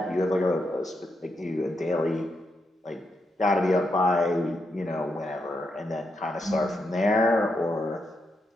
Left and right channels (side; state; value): both; normal; correlation 0.82